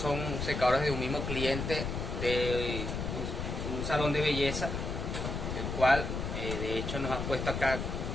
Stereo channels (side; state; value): left; noise; rumble, 3 dB below the sound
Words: secadores de un mismo cliente de un salón de belleza, el cual de hecho nos ha puesto acá